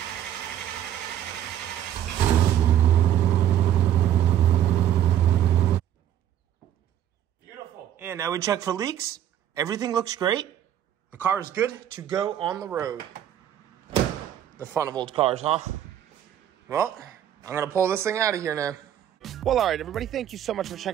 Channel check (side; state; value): left; quieter; 10.8 dB